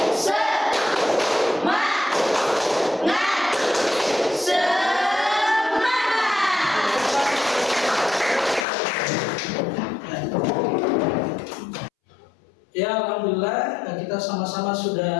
Semangat. Ya, alhamdulillah kita sama-sama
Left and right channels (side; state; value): right; drops out; at 8.7 s